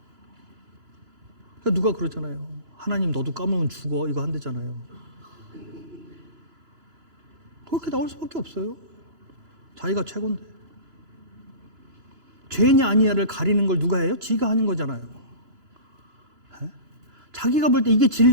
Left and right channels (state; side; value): late; left; 2.9 ms